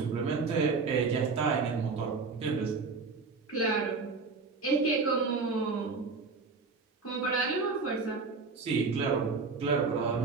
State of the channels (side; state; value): left; quieter; 4.5 dB